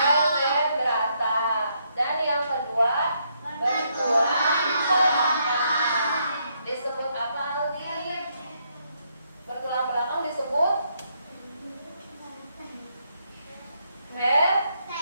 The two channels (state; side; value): inverted; both; correlation -0.75